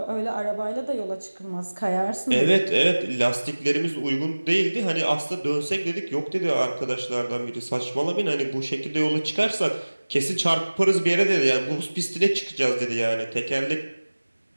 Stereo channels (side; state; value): both; inverted; correlation -1.00